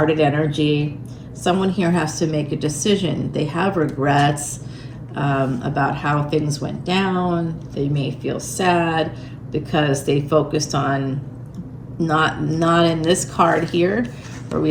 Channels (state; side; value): identical; both; correlation 1.00